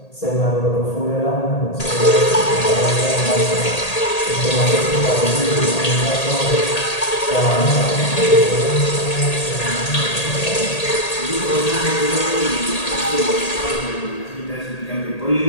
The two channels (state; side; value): late; right; 1.8 ms